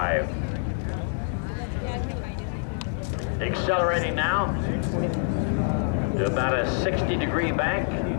Accelerating now to about a 60-degree bank.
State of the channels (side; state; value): right; silent; 61 dB below the other